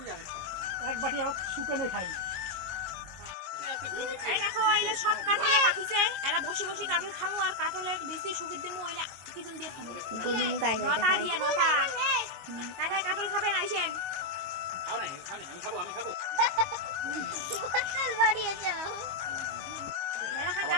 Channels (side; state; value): left; late; 22 ms